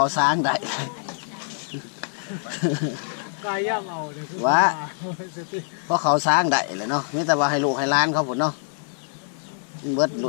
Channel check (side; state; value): right; silent; digital silence